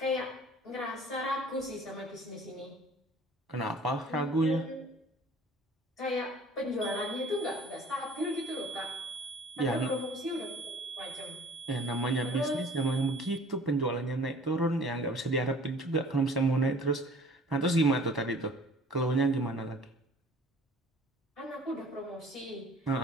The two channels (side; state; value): both; normal; correlation 0.50